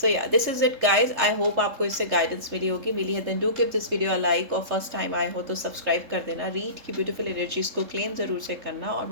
सो या this is it guys. I hope आपको इससे गाइडेंस मिली है। Then do give this video a like, और फर्स्ट टाइम आए हो तो सब्सक्राइब कर देना। रीड की ब्यूटीफुल एनर्जीज को क्लेम ज़रूर से करना, और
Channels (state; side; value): late; left; 3.7 ms